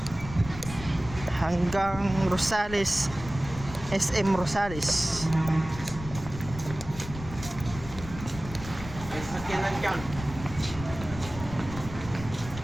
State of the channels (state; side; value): noise; left; rumble, 11 dB below the sound